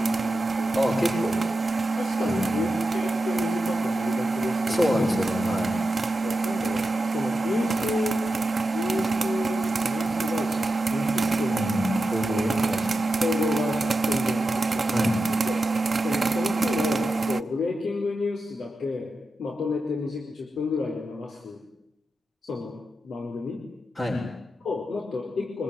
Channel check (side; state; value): both; normal; correlation 0.90